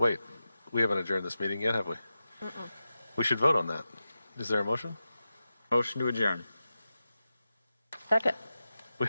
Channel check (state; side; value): inverted; both; correlation -0.92